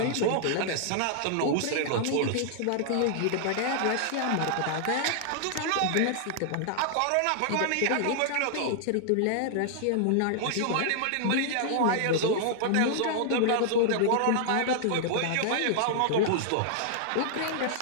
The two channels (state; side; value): different; both; correlation -0.01